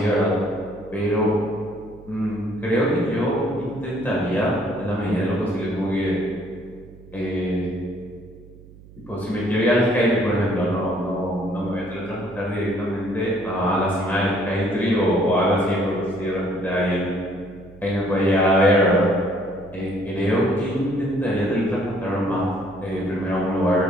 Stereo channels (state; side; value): noise; right; hum, 21 dB below the sound